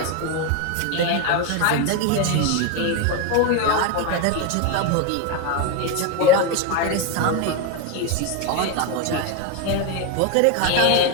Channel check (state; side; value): different; both; correlation 0.02